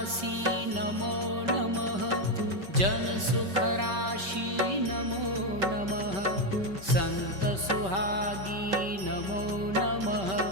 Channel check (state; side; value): late; left; 5.2 ms